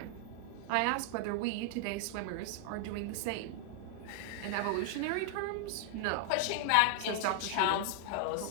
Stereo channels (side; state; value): both; different; correlation 0.00